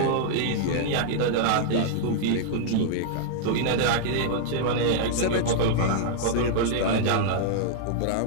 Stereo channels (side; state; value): both; different; correlation -0.01